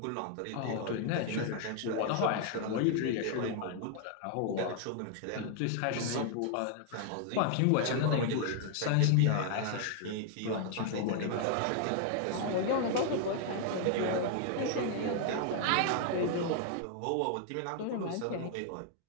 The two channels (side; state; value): both; different; correlation 0.00